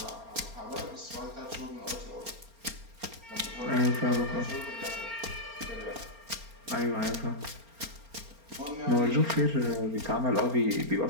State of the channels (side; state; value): left; late; 4.3 ms